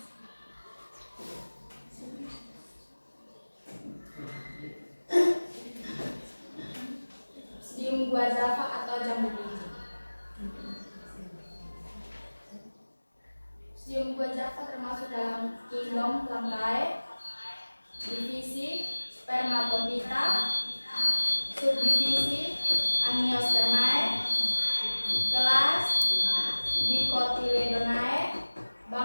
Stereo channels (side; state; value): both; inverted; correlation -1.00